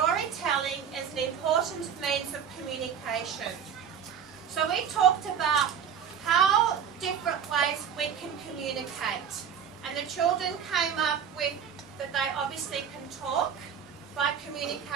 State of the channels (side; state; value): left; quieter; 7.9 dB